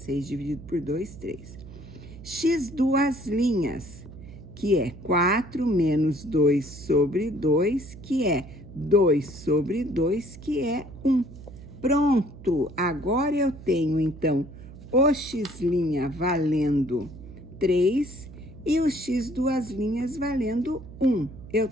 dividido por 2, 3. X duas linhas, que é 4 menos 2 sobre 2, que é 2 sobre 2, que é 1. Pronto! Agora eu tenho, então, o x' valendo 3 e o x duas linhas valendo 1. Eu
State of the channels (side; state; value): right; noise; hum, 16 dB below the sound